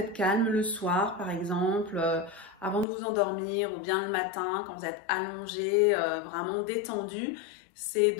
calme, le soir par exemple, avant de vous endormir ou bien le matin, quand vous êtes allongé, vraiment détendu, c'est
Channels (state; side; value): drops out; right; at 2.9 s